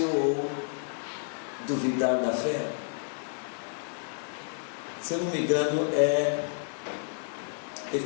ou duvidar da fé. Se eu não me engano, é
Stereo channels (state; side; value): silent; right; 58 dB below the other